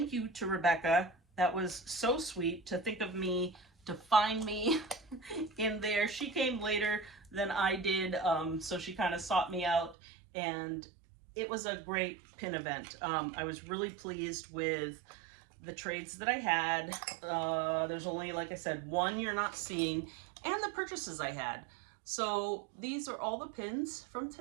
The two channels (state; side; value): drops out; left; at 10.0 s